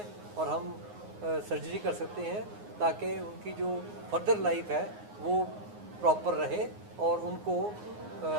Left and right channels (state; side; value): late; left; 9.6 ms